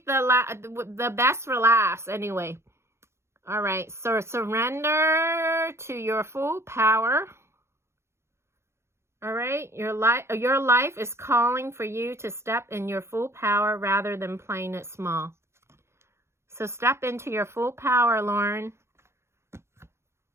best for last anyway. All right. So surrender to your full power. All right. Your life is calling for you to step in your full power rather than playing it small. So step into your full power, Lauren.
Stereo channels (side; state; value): left; late; 0.13 ms